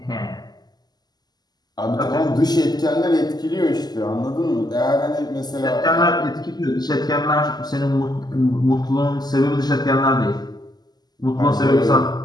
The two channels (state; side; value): late; right; 0.20 ms